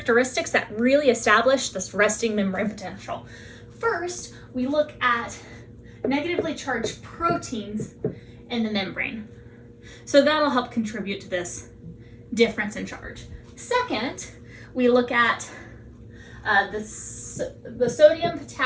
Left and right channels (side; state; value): both; identical; correlation 1.00